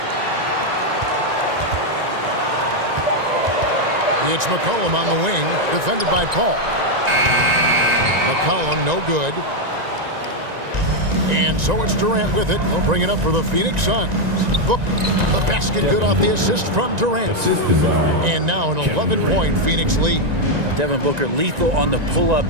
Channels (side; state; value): left; late; 1.9 ms